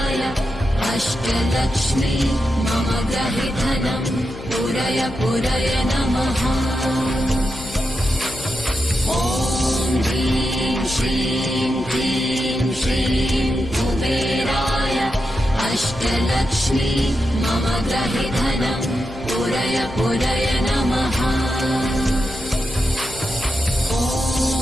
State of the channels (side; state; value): left; noise; hum, 14 dB below the sound